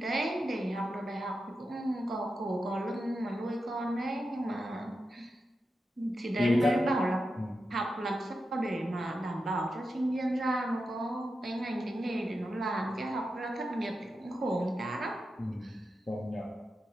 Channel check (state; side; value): normal; both; correlation 0.89